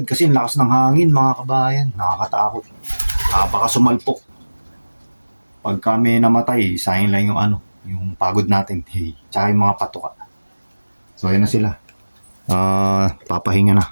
kasi ang lakas ng hangin mga kabayan, nakakatakot. Baka sumalpok. Pag kami namatay, sayang lang yung ano, yung pagod natin, tsaka yung mga patuka. So ayun na sila. Papahinga na.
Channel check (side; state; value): both; inverted; correlation -1.00